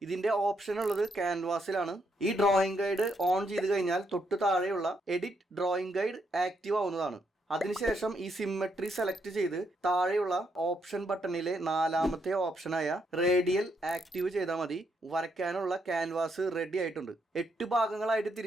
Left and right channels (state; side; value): normal; both; correlation 0.77